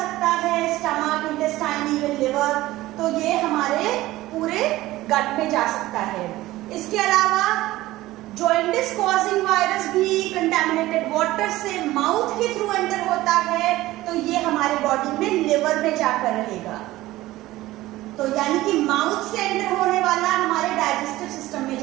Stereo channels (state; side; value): quieter; left; 17.0 dB